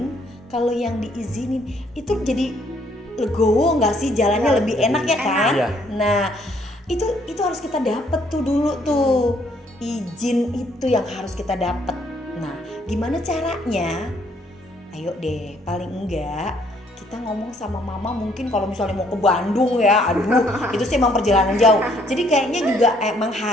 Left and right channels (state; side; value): normal; both; correlation 0.66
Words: kalau yang diizinin itu jadi legowo nggak sih, jalannya lebih enak ya kan? Iya. Nah itu harus kita dapet tuh dulu tuh, izin itu yang harus kita dapet. Nah gimana caranya? Ayo deh, paling enggak kita ngomong sama mama, mungkin kalau misalnya mau ke Bandung ya, aduh itu sih emang perjalanan jauh. Jadi kayaknya juga emang